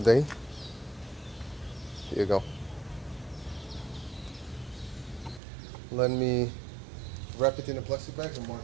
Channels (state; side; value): drops out; left; at 5.4 s